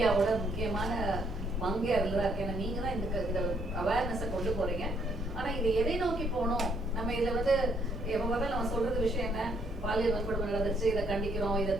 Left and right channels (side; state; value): both; normal; correlation 0.69